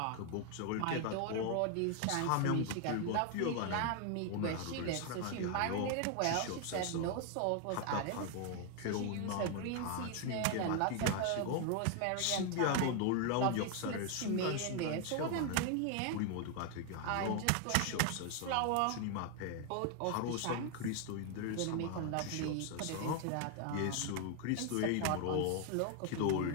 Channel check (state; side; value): different; both; correlation 0.01